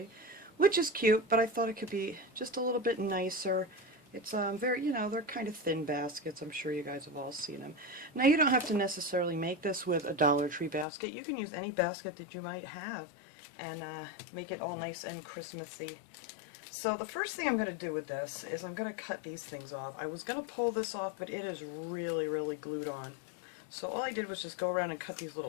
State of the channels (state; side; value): drops out; right; at 10.9 s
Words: which is cute, but I thought it could be just a little bit nicer. It's very, they're kind of thin baskets. I'm sure you guys have all seen them. Now you don't have to necessarily make this with a Dollar Tree basket. You can use any basket that you might have and make it all nice and Christmassy. So the first thing I'm going to do with this is I'm going to cut these things off. I was going to pull this off, but it is really glued on. So all I did was just go around and cut these